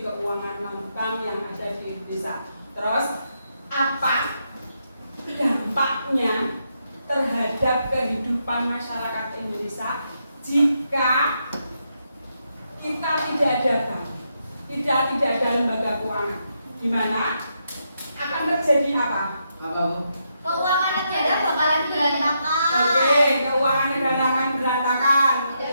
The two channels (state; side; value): inverted; both; correlation -0.80